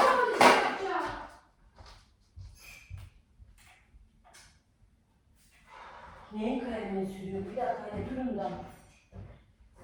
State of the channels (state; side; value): identical; both; correlation 1.00